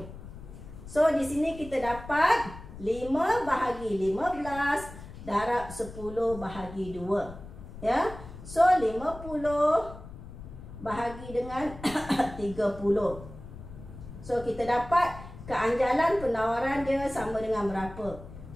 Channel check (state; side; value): noise; left; rumble, 14 dB below the sound